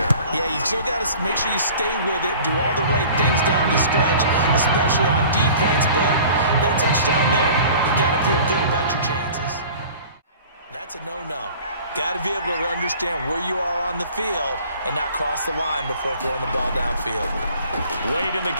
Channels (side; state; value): both; inverted; correlation -0.45